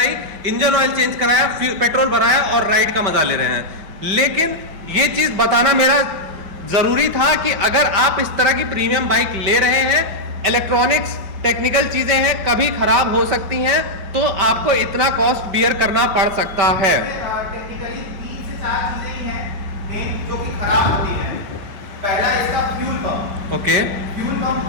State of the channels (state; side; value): late; left; 5.1 ms